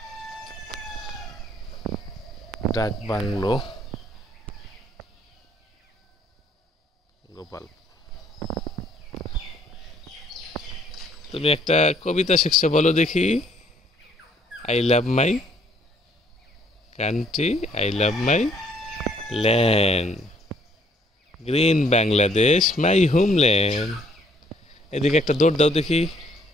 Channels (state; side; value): normal; both; correlation 0.64